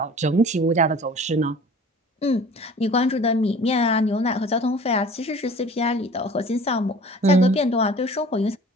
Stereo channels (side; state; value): both; normal; correlation 0.45